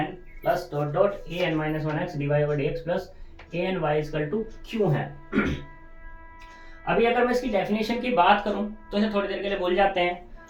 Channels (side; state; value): both; identical; correlation 1.00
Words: plus dot dot A N minus one x D Y over D x plus A N Y equal to Q है। अभी अगर मैं इसकी डेफिनेशन की बात करूं तो इसे थोड़ी देर के लिए भूल जाते हैं।